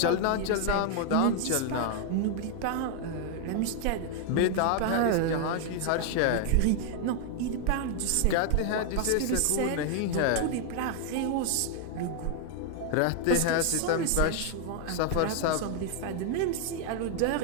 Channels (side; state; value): both; different; correlation 0.00